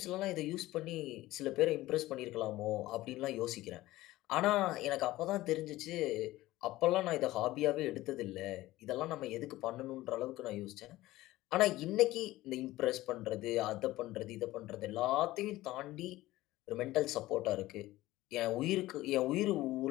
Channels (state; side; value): quieter; right; 17.1 dB